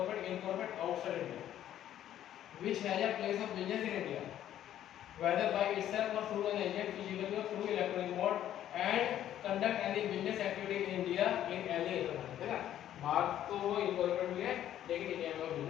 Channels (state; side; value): quieter; right; 11.5 dB